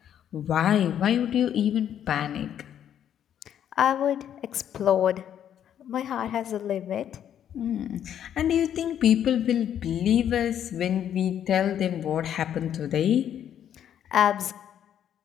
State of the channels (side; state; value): right; quieter; 9.8 dB